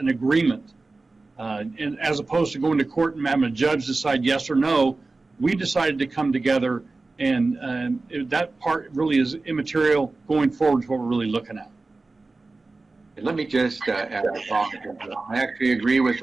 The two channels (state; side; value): quieter; left; 3.5 dB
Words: agreement. And as opposed to going to court and having a judge decide yes or no, we decided to come together, and that part really is immaterial going forward to what we're really looking at. And let me just add a thought. I actually agree with